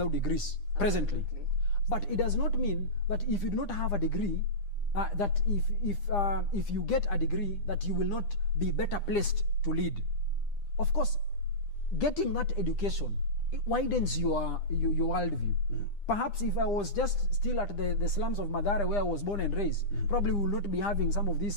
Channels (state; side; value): late; right; 9.9 ms